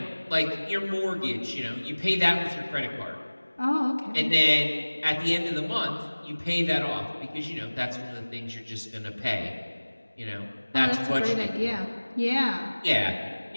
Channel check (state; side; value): inverted; both; correlation -1.00